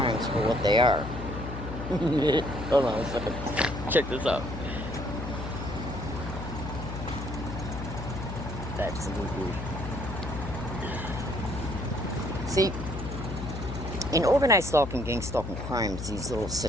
for what they are. Hold on a second. Check this out. Absolutely. See, in organized stalking, gang stalking crimes, these little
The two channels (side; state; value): left; noise; hum, 7 dB below the sound